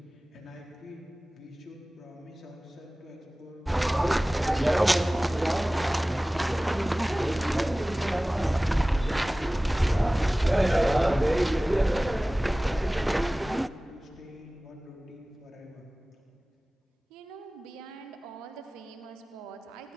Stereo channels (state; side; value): normal; both; correlation 0.98